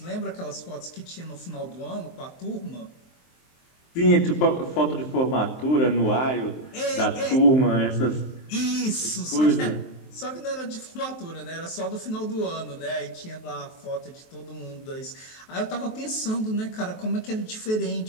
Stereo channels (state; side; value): late; right; 23 ms